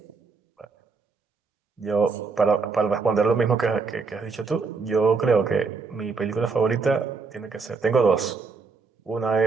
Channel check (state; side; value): quieter; left; 4.7 dB